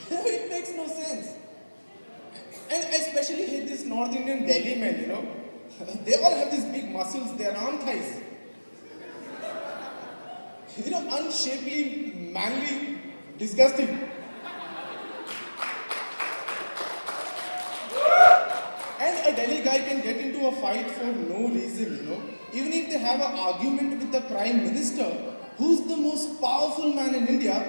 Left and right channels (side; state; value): both; inverted; correlation -1.00